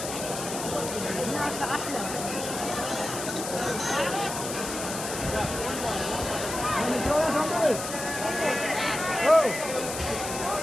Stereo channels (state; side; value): noise; left; hiss, 6 dB below the sound